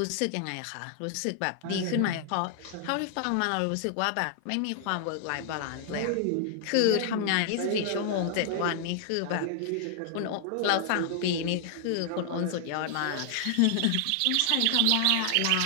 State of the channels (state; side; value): different; both; correlation 0.00